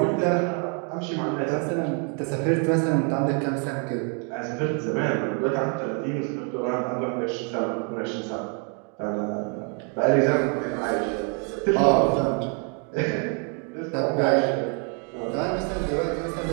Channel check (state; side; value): quieter; left; 38.6 dB